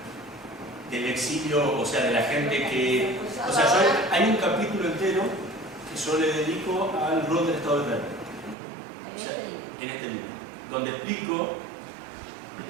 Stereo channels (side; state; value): left; drops out; at 8.6 s